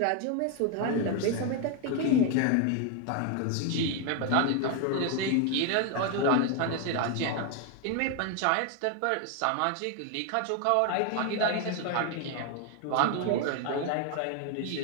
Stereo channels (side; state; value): both; different; correlation 0.01